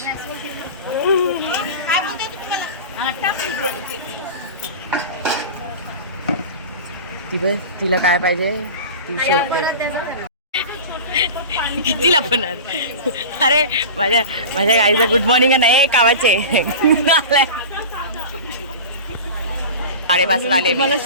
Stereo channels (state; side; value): inverted; both; correlation -0.32